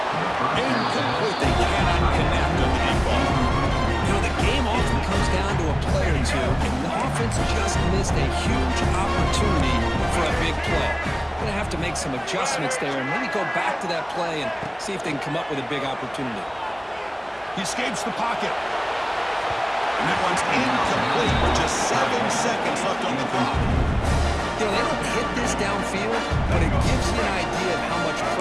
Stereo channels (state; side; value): identical; both; correlation 1.00